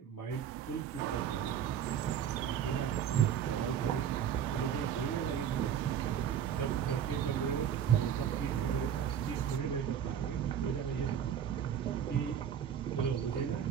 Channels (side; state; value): left; quieter; 8.9 dB